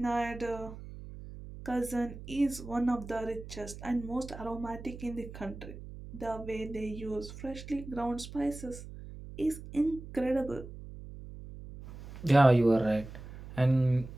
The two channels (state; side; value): noise; right; hum, 13 dB below the sound